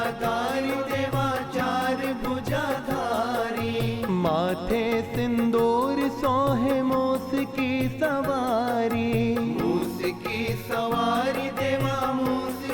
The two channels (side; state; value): both; identical; correlation 1.00